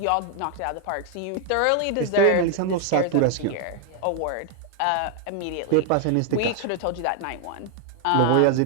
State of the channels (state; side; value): different; both; correlation 0.00